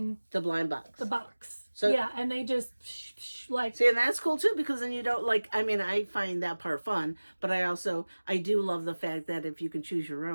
the blind box. The box. So yeah, and they just see, and that's cool too, because then you don't I find that part fun, but I do love the fact that if you can choose your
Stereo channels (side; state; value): both; inverted; correlation -1.00